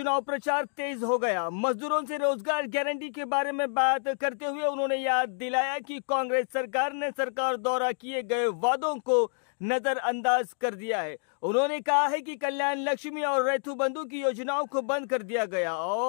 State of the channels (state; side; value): silent; right; 59 dB below the other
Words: प्रचार तेज हो गया। मजदूरों से रोजगार गारंटी के बारे में बात करते हुए उन्होंने याद दिलाया कि कांग्रेस सरकार ने सरकार द्वारा किए गए वादों को नजरअंदाज कर दिया है। उन्होंने कहा है कि कल्याण लक्ष्मी और रैथू बंधु की योजनाओं को बंद कर दिया गया